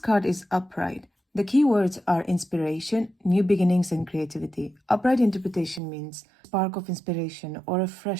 is upright, the key words are inspiration, new beginnings, and creativity. Upright interpretation means spark of inspiration or a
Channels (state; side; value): drops out; left; at 5.8 s